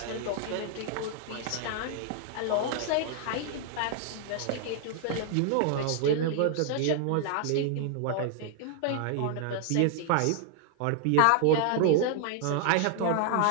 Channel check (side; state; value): both; different; correlation 0.00